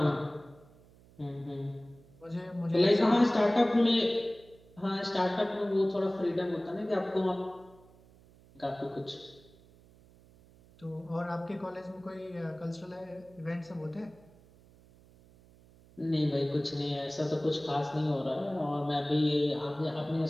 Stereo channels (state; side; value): noise; right; hum, 26 dB below the sound